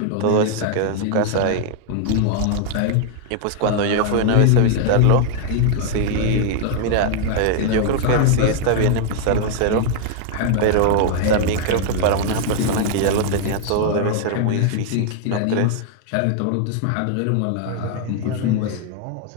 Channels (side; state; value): both; different; correlation 0.00